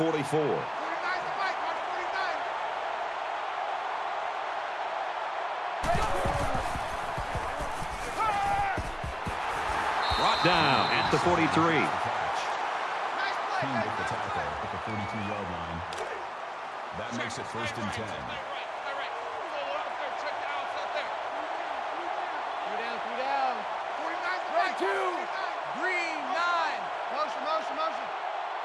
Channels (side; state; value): both; identical; correlation 1.00